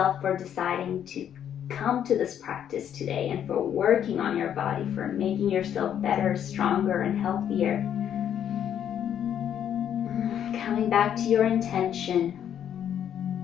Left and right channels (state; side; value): quieter; right; 9.5 dB